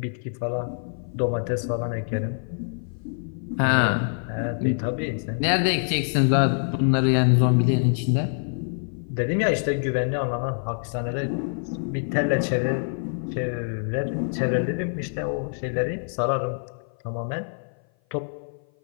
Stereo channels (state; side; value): silent; right; 56 dB below the other